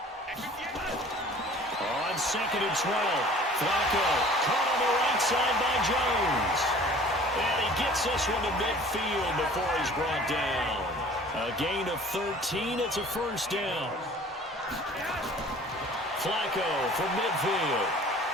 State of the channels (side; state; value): both; normal; correlation 0.48